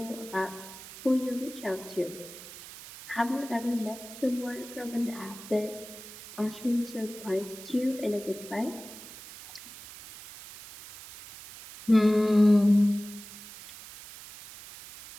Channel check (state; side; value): noise; right; hiss, 15 dB below the sound